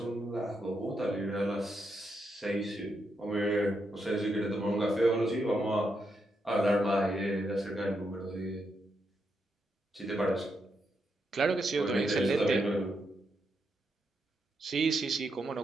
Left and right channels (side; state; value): both; normal; correlation 0.82